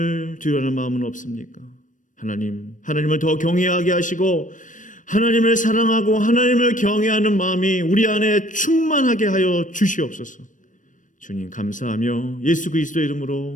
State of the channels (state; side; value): late; right; 0.37 ms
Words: 두려워하는 마음은 없습니까? 하나님을 더 경외하게 하시고 하나님을 사랑하고 하나님을 경외하는 마음이 우리 안에 충만하게 하여 주시옵소서. 주님 감사하며 예수 그리스도의